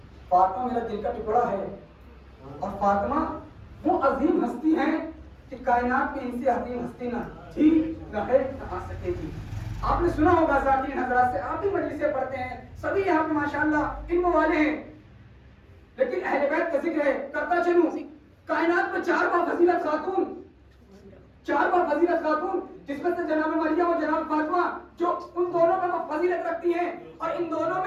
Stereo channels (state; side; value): identical; both; correlation 1.00